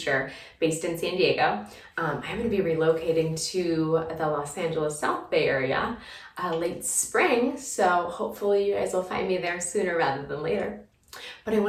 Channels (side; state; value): both; identical; correlation 1.00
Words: based in San Diego. I'm going to be relocating to the Los Angeles South Bay area late spring, so hopefully you guys will find me there sooner rather than later. But I